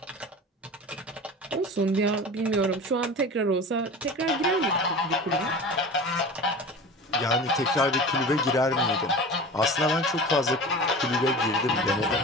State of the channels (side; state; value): both; normal; correlation 0.34